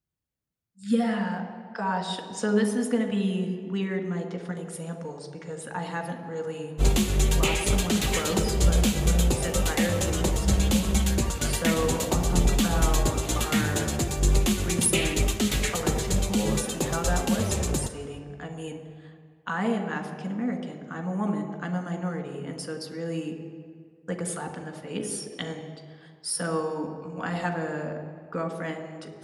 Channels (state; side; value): identical; both; correlation 1.00